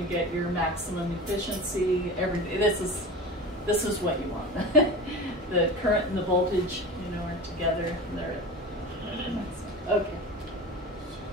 get your maximum efficiency. Everything. This is what you want. The current and the voltage, you know, are together. And they're okay.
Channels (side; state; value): both; normal; correlation 0.31